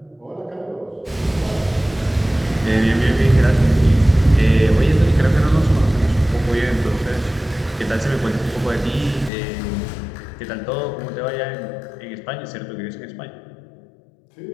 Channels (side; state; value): right; drops out; at 9.3 s